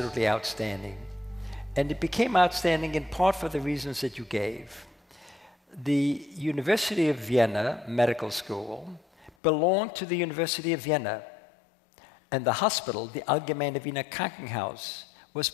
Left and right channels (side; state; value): right; drops out; at 9.3 s